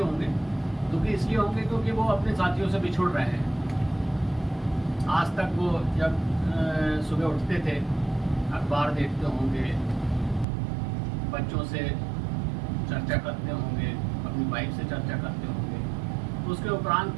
दुखी इसलिए होंगे क्योंकि वो अपने साथियों से बिछुड़ रहे हैं। आज तक वो जब सुबह उठते थे, अखबार देखते होंगे, बच्चों से चर्चा करते होंगे, अपनी वाइफ से चर्चा करते होंगे, तो उसके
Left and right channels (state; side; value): drops out; left; at 10.5 s